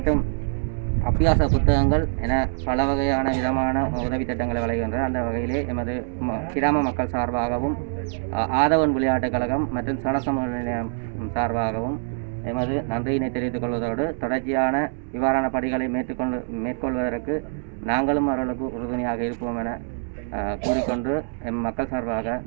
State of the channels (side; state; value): left; silent; digital silence